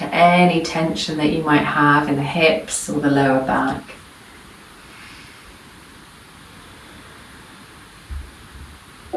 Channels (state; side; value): identical; both; correlation 1.00